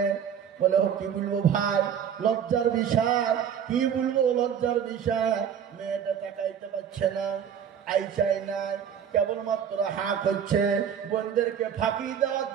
বলে কি বলবো ভাই, লজ্জার বিষয়। কি বলবো লজ্জার বিষয়? মেয়েটা তাকাইতে পারছে না, আই চাই না, কেবলমাত্র হাঁ করছে। বোনদেরকে ফাঁকি দেওয়ার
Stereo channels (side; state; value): left; quieter; 8.3 dB